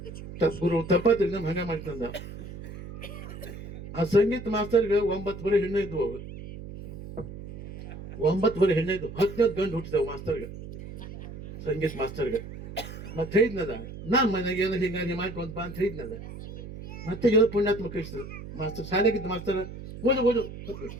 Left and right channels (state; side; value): noise; right; hum, 12 dB below the sound